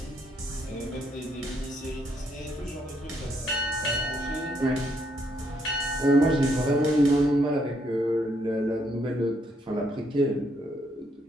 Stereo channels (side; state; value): both; normal; correlation 0.73